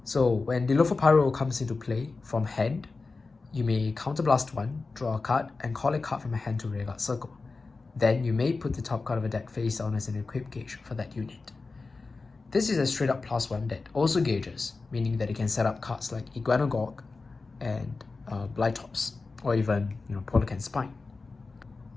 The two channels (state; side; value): quieter; right; 3.9 dB